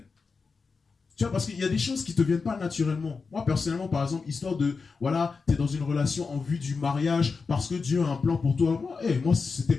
Tu vois, parce qu'il y a des choses qui te viennent pas naturellement. Moi, personnellement, par exemple, histoire de, voilà, t'es dans une relation en vue du mariage parce que Dieu a un plan pour toi. Moi, c'était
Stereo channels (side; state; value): right; quieter; 4.8 dB